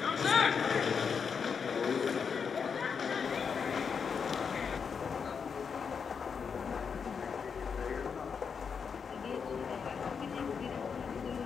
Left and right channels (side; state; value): right; quieter; 6.2 dB